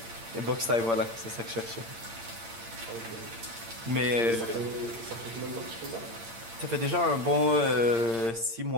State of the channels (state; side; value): late; left; 8.7 ms